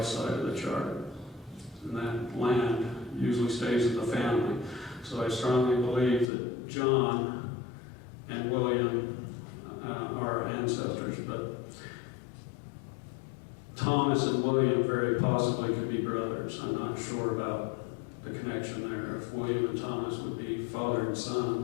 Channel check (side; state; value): right; drops out; at 6.3 s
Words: side of the chart. And that land usually stays in the family. So I strongly believe that John and William are ancestors, but Thomas and William very possibly could be brothers. I'm not sure about the connection there, if William and Thomas would be father and